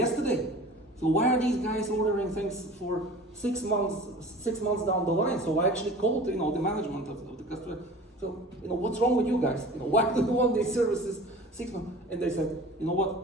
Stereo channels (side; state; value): both; normal; correlation 0.41